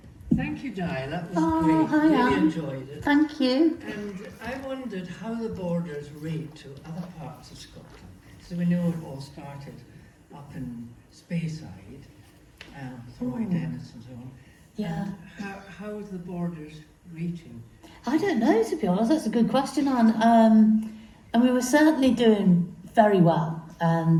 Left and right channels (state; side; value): identical; both; correlation 1.00